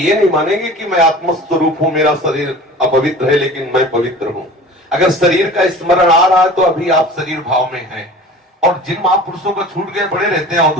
नहीं मानेंगे कि मैं आत्मस्वरूप हूं, मेरा शरीर अपवित्र है लेकिन मैं पवित्र हूं। अगर शरीर का स्मरण आ रहा है तो अभी आप शरीर भाव में हैं। और जिन महापुरुषों का छूट गए पड़े रहते हैं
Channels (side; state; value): both; normal; correlation 0.40